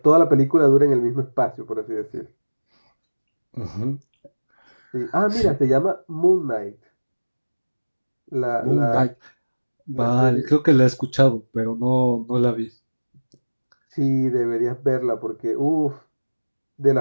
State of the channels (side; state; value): both; inverted; correlation -1.00